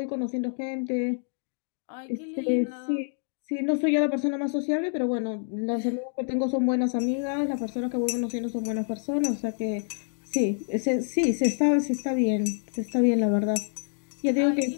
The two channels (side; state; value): right; silent; digital silence